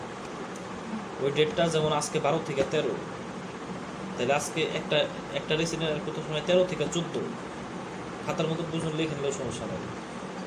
ওই ডেটটা যেমন আজকে 12 থেকে 13, তাহলে আজকে একটা রেসিডেন্ট অ্যাড করতে সময় 13 থেকে 14 খাতার মতো দুজন লিখে নিলেও সমস্যা নেই।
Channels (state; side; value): identical; both; correlation 1.00